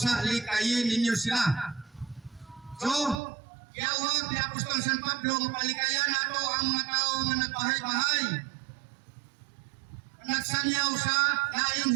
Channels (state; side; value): drops out; left; at 3.2 s